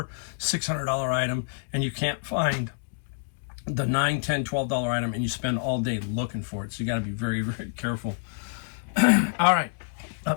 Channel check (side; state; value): right; silent; digital silence